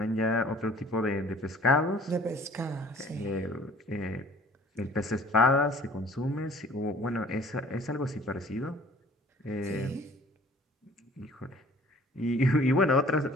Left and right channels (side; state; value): both; normal; correlation 0.52